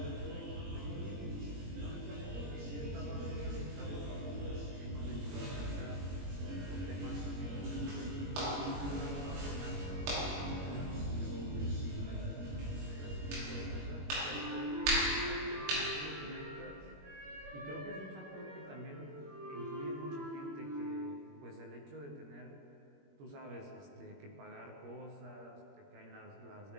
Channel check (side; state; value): left; late; 21 ms